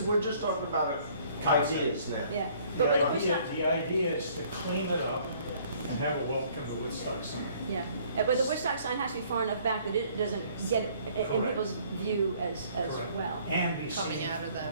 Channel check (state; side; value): inverted; both; correlation -0.59